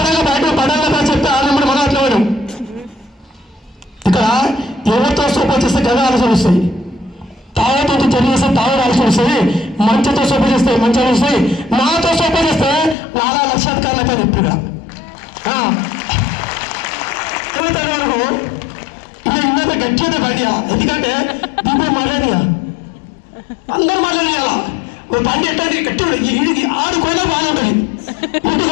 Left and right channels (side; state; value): right; drops out; at 13.0 s